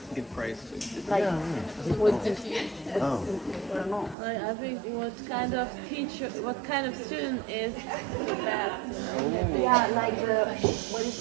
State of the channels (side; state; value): left; drops out; at 4.2 s